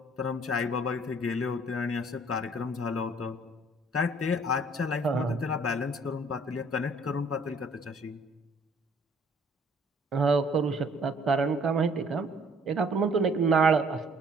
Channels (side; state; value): both; normal; correlation 0.58